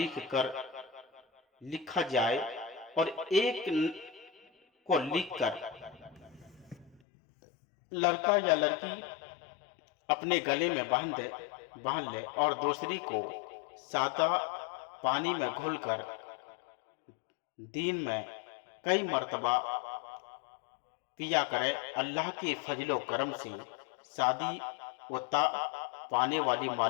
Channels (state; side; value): drops out; right; at 7.0 s